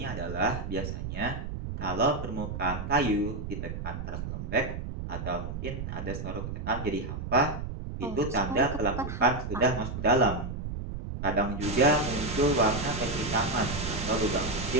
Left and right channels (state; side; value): noise; right; rumble, 6 dB below the sound